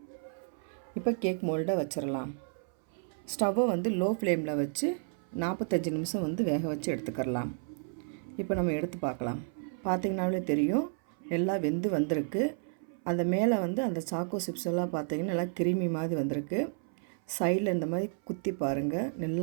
இப்போ கேக் மோல்டை வச்சிடலாம். ஸ்டவ்வை லோ ஃப்ளேமில் வச்சு 45 நிமிஷம் வேக வச்சு எடுத்துக்கிறலாம். இப்போ நம்ம எடுத்து பார்க்கலாம். பார்த்திங்கனாலே தெரியும், நல்லா வெந்து வந்திருக்கு. அந்த மேலே அந்த சாக்கோ சிப்ஸ் எல்லாம் பார்த்திங்கன்னா நல்லா கிரீமி மாதிரி வந்திருக்கு. சைடில் இந்த மாதிரி குத்தி பாருங்கள்,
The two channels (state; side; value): silent; left; 57 dB below the other